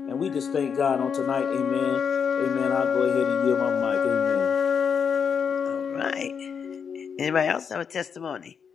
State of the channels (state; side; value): quieter; right; 6.7 dB